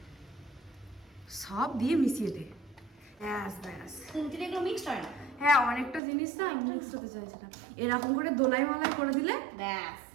সব দিয়ে মিশিয়ে দে, ব্যাস ব্যাস। তিনটে এগুলো মিক্সড হয় না। হ্যাঁ অনেকটা জিনিস না মিক্স হতে চাইছে না, এরকম করে দোলাই মালাই করে দিলে ব্যাস,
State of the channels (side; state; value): left; drops out; at 6.0 s